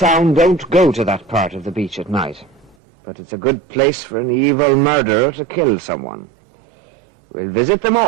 don't go to that part of the beach at night. But it's a good place for an evil murderer to kill someone. We'll visit the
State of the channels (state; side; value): drops out; left; at 2.8 s